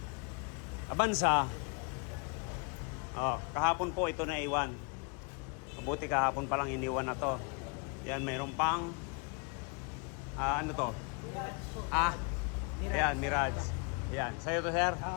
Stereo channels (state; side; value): quieter; right; 33.2 dB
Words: Avanza. Oh, kahapon po ito na iwan. Mabuti kahapon pa lang iniwan na to. Yan, mayroon pang ano to? Ayan, Mirage. Ayan, sa'yo to sir?